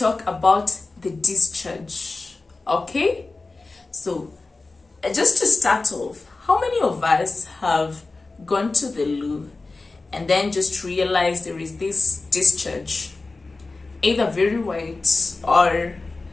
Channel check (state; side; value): quieter; right; 3.6 dB